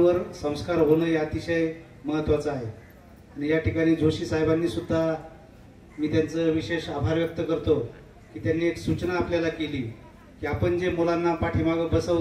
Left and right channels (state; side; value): identical; both; correlation 1.00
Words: संस्कार होणं हे अतिशय महत्त्वाचं आहे, आणि या ठिकाणी जोशी साहेबांनी सुद्धा मी त्यांचं विशेष आभार व्यक्त करतो की त्यांनी एक सूचना आपल्याला केली की आपण जे मुलांना पाठीमागं